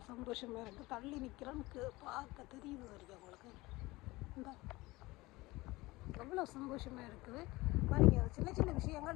சந்தோஷமாக இருக்குது. தள்ளி நிற்கிறேன்னு பார்க்க தெரியுது வருது உங்களுக்கு. இந்த எவ்வளோ சந்தோஷமாக இருக்குது பாருங்க. சின்ன சின்ன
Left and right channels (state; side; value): quieter; right; 20.7 dB